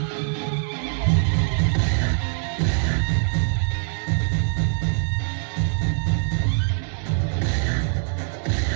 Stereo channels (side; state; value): left; silent; 63 dB below the other